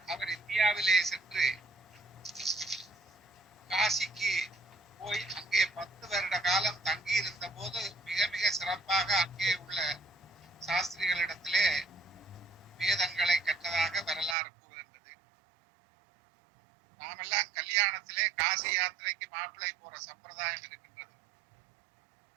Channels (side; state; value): left; drops out; at 14.4 s